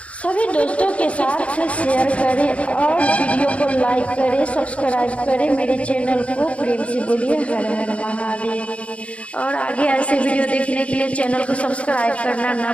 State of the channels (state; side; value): late; right; 0.063 ms